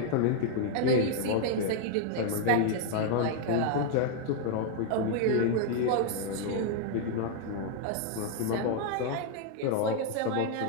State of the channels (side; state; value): both; different; correlation 0.00